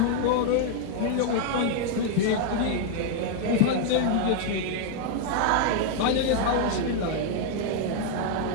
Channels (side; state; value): both; different; correlation 0.00